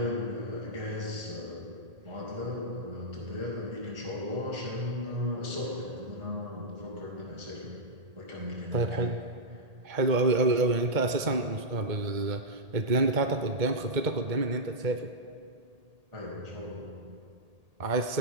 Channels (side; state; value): left; late; 1.8 ms